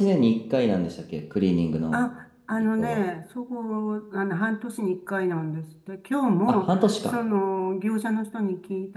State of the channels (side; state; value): both; identical; correlation 1.00